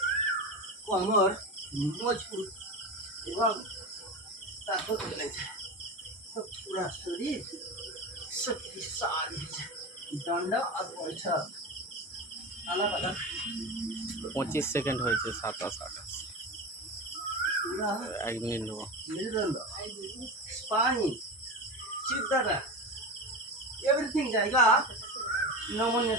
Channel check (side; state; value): both; normal; correlation 0.24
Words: कमर मजबूत एवं ताकत मिले जाए तो पूरा शरीर शक्तिशाली हो जाए। डंडा और बैठक अलग अलग 25 সেকেন্ড হয়েছে, 27 28 पूरा 1 মিনিট নেবো। मेरुदंड स्पाइन चित्तरा एवरीथिंग जाएगा नमूने